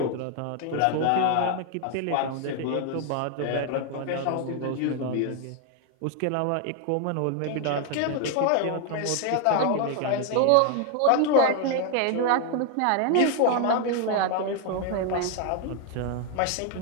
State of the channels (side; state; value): both; different; correlation 0.00